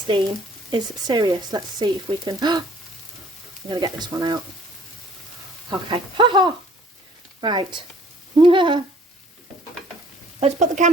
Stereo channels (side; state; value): both; normal; correlation 0.56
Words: is serious. Let's see if we can... I'm going to get this one out. Okay. Ha-ha! Right. Let's put the